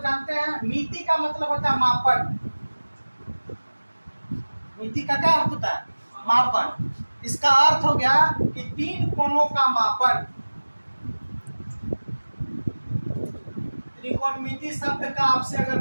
हैं। मिति का मतलब होता है मापन। मिति का क्या अर्थ होता है, मापन। इसका अर्थ हो गया कि 3 कोणों का मापन। त्रिकोणमिति शब्द का आपसे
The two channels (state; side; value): inverted; both; correlation -1.00